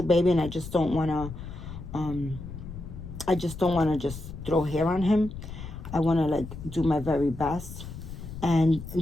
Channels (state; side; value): noise; left; rumble, 11 dB below the sound